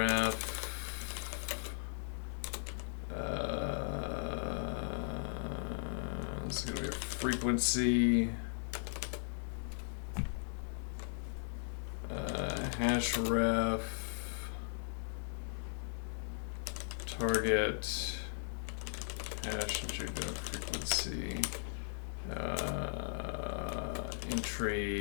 this is going to be a frequency hash ref target hash entry to frequency,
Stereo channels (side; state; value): right; silent; digital silence